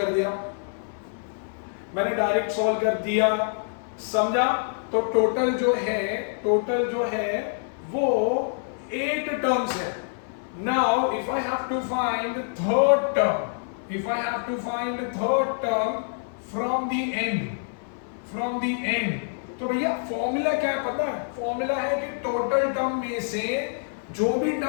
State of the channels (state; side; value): silent; right; 55 dB below the other